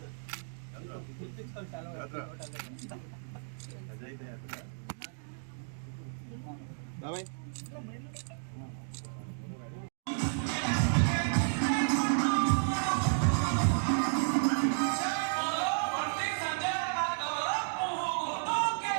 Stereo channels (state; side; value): silent; left; digital silence